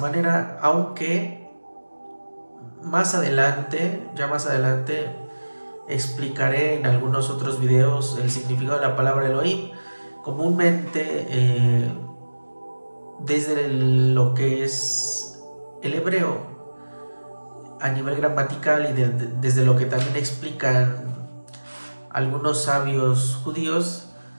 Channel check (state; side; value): inverted; both; correlation -1.00